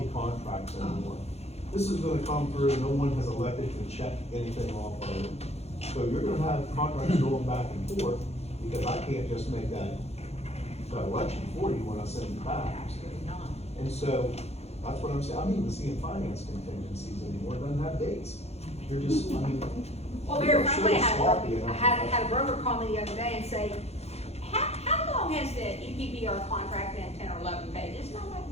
contracts anymore. This is gonna come through, no one has elected to check anything off of it. So you're gonna have contracts going back and forth, because I can't just make that election for you when I send it back. Absolutely not. And so, that's what I'm saying, I'm even seeing finance contingencies anymore, it doesn't have dates. You're just, Well, very they're so frankly, sloppy and I had a broker call me the other day and say, how long has the EPBR contract been, 10 or 11 pages? And I'm like,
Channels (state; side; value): late; right; 0.31 ms